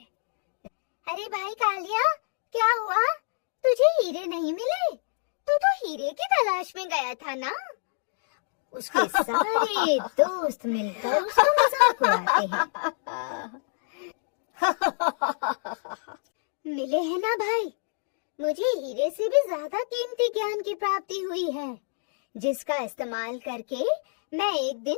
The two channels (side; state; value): right; silent; digital silence